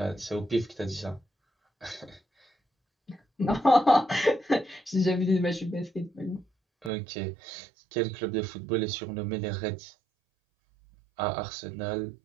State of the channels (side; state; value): left; drops out; at 6.9 s